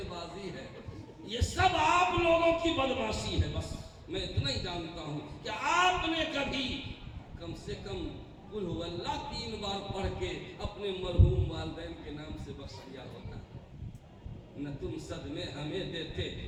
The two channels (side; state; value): both; identical; correlation 1.00